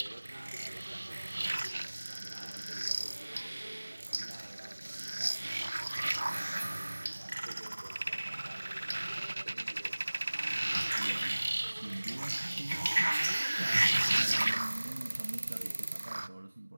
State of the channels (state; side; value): inverted; both; correlation -1.00